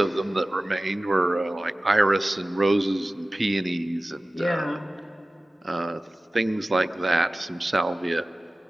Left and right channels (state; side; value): normal; both; correlation 0.97